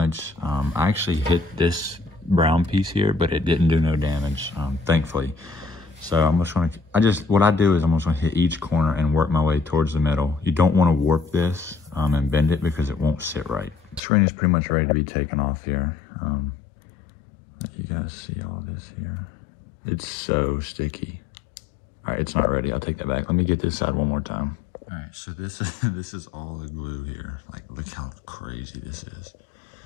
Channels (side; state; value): right; drops out; at 14.0 s